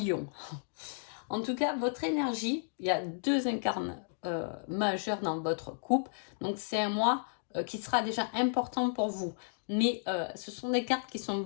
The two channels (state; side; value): silent; right; digital silence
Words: En tout cas, votre énergie, il y a deux incarnes majeurs dans votre couple. Donc c'est un mois qui sera déjà important pour vous. Mais ce sont des cartes qui sont